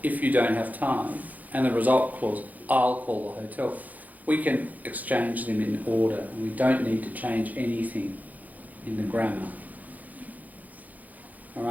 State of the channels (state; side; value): late; left; 0.080 ms